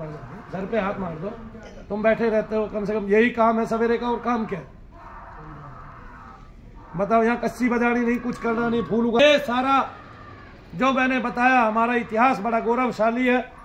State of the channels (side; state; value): both; identical; correlation 1.00